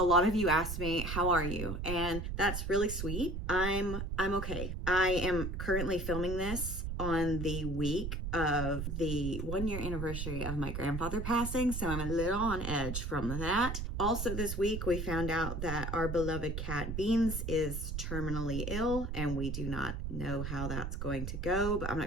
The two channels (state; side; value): noise; right; rumble, 4 dB below the sound